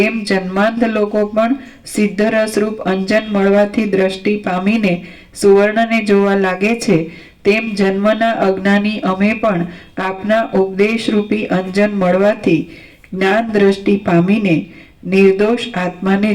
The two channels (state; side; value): identical; both; correlation 1.00